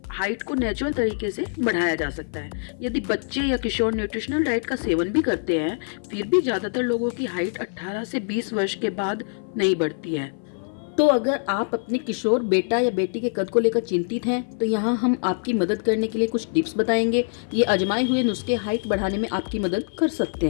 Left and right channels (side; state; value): right; silent; 56 dB below the other